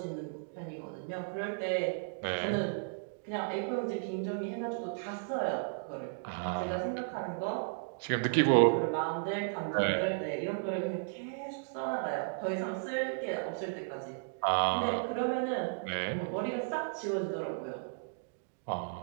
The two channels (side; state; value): left; silent; digital silence